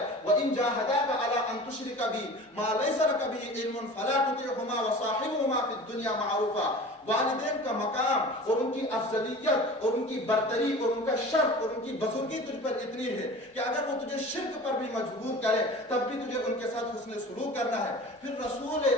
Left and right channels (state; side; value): normal; both; correlation 0.39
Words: وَإِن جَاهَدَاكَ عَلَىٰ أَن تُشْرِكَ بِي مَا لَيْسَ لَكَ بِهِ عِلْمٌ فَلَا تُطِعْهُمَا وَصَاحِبْهُمَا فِي الدُّنْيَا مَعْرُوفًا۔ والدین کا مقام اور ان کی افضلیت اور ان کی برتری اور ان کا شرف اور ان کی بزرگی تجھ پر اتنی ہے کہ اگر وہ تجھے شرک پر بھی مجبور کرے تب بھی تجھے ان کے ساتھ حسن سلوک کرنا ہے۔ پھر رسول